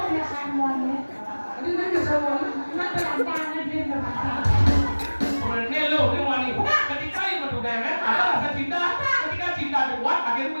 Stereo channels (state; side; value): inverted; both; correlation -1.00